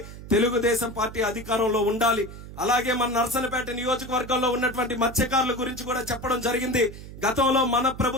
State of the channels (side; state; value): right; noise; hum, 14 dB below the sound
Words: తెలుగుదేశం పార్టీ అధికారంలో ఉండాలి. అలాగే మన నర్సన్నపేట నియోజకవర్గంలో ఉన్నటువంటి మత్స్యకారుల గురించి కూడా చెప్పడం జరిగింది. గతంలో మన